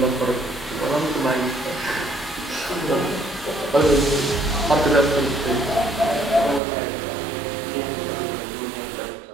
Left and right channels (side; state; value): left; drops out; at 6.6 s